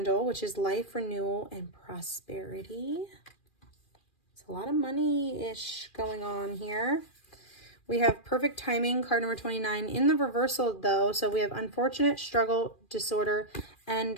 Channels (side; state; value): right; late; 2.4 ms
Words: which is life, renewal, and prosperity. It's a lot of money-ish going on here. We have Perfect Timing, card number 29, in the reversal though. So we have Unfortunate, Struggle, Disorder,